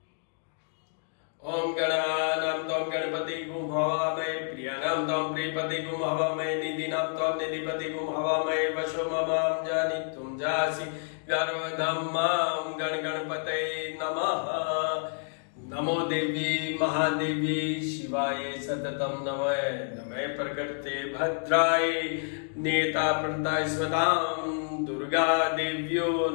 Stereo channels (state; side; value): silent; right; digital silence